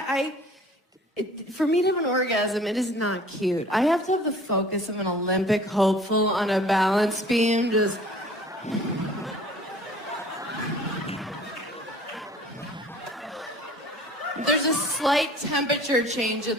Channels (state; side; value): normal; both; correlation 0.50